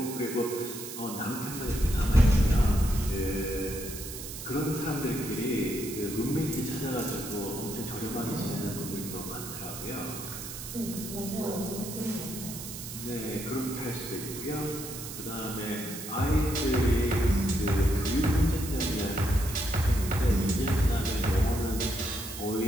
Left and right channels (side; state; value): right; noise; hiss, 9 dB below the sound